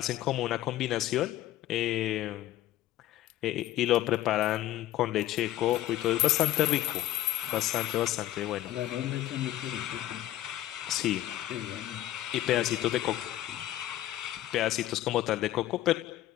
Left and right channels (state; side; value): quieter; right; 14.1 dB